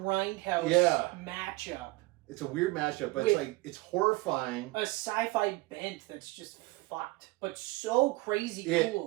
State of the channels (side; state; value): left; quieter; 21.5 dB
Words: matchup. It's a weird matchup, but it's horrifying. A sci-fi bent that's just fucked, but so crazy